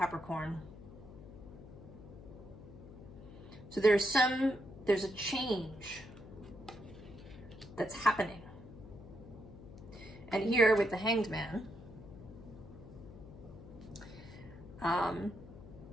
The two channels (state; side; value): noise; left; hum, 15 dB below the sound